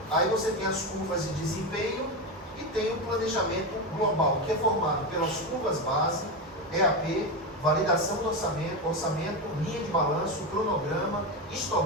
aí você tem as curvas de desempenho e tem o planejamento global, que é formado pelas curvas base, EAP, validação do orçamento, linha de balanço, cronograma,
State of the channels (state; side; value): normal; both; correlation 0.15